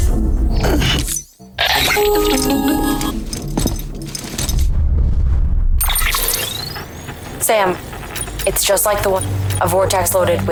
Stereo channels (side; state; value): both; identical; correlation 1.00